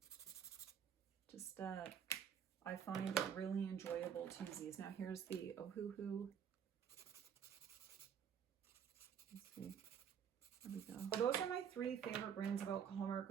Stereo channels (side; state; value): left; quieter; 8.2 dB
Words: Just, I find it really enjoyable to use these. Now here's the Ohuhu. Let's see. There we go. Those are my three favorite brands of alcohol